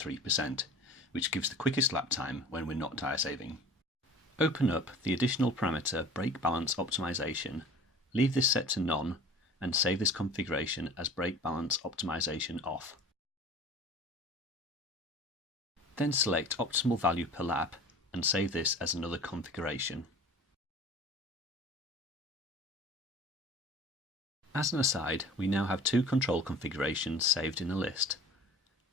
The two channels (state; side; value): normal; both; correlation 0.42